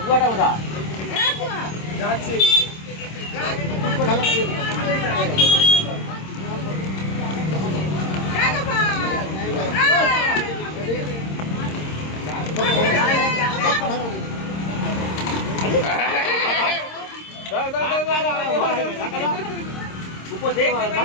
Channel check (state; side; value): late; right; 26 ms